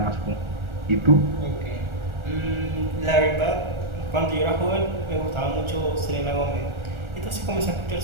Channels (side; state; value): left; late; 1.4 ms